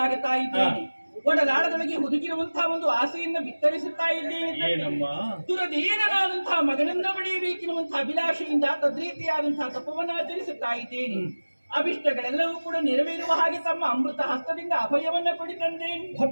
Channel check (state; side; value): inverted; both; correlation -1.00